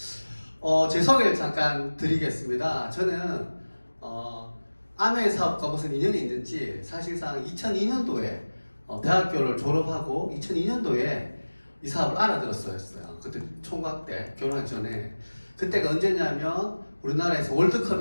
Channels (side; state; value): both; inverted; correlation -1.00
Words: 제 소개를 잠깐 드리겠습니다. 저는 아메 사업과 무슨 인연이 있는지, 사실상 2002년도에 대학교를 졸업하고 2002년도에 이 사업을 알아들었어요. 그때 총각 때, 결혼하기 전에. 그때가 언제냐면 우리나라에서